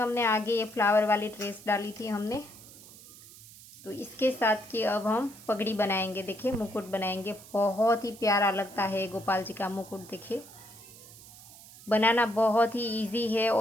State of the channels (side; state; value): right; noise; hiss, 19 dB below the sound